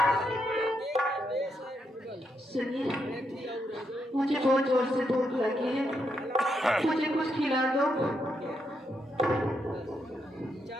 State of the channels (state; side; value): normal; both; correlation 0.80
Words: सुनिए, मुझे बहुत जोर से भूख लगी है, मुझे कुछ खिला दो।